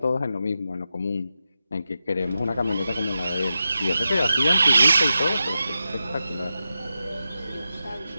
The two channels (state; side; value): inverted; both; correlation -0.90